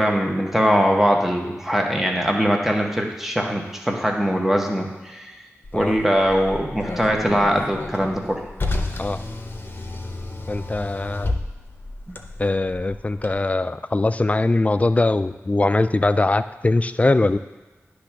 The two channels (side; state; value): both; normal; correlation 0.93